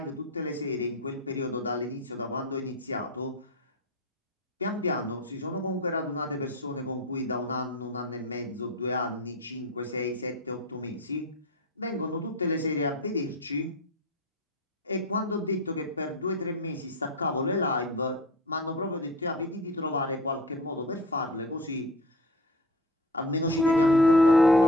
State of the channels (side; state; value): both; normal; correlation 0.32